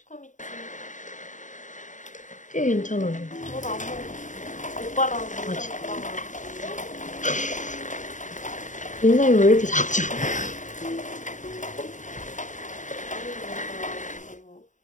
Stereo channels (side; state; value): right; late; 0.36 ms